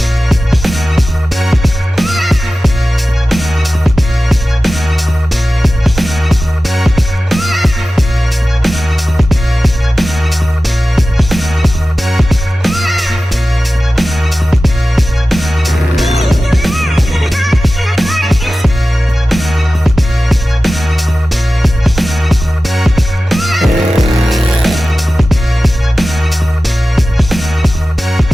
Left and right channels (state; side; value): normal; both; correlation 0.95